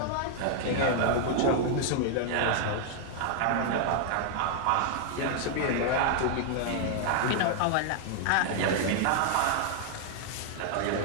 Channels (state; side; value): different; both; correlation 0.00